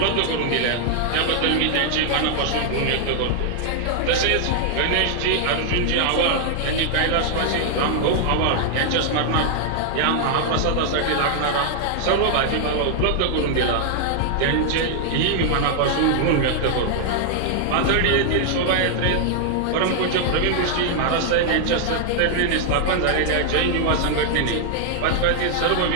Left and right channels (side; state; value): both; different; correlation 0.00